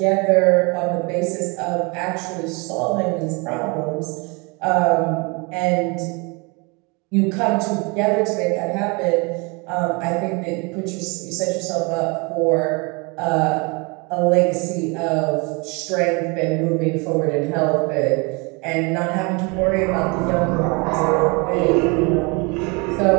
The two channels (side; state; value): left; quieter; 29.5 dB